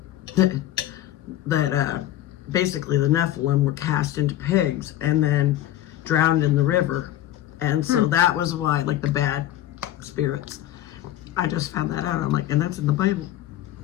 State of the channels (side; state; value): right; quieter; 13.1 dB